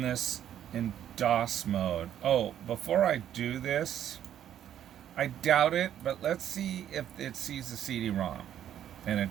this in DOS mode. Oh, before I do this, I doubt it, but let's see if it sees the CD-ROM, and it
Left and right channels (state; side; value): quieter; left; 10.5 dB